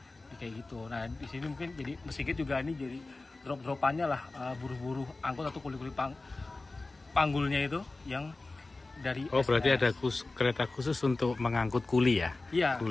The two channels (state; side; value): quieter; right; 3.3 dB